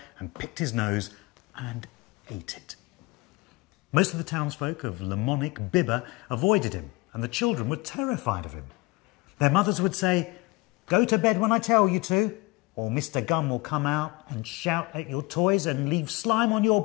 and picked his nose and ate it. Most of the townsfolk of Lamonic Bibber avoided him, and the children were terrified of him. Their mothers would say, "Go to bed when I tell you to, or Mr. Gum will come out and shout at your toys and leave slime on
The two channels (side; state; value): right; quieter; 23.7 dB